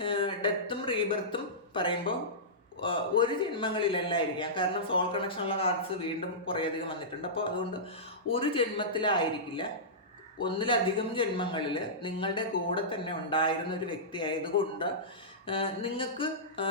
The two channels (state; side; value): normal; both; correlation -0.16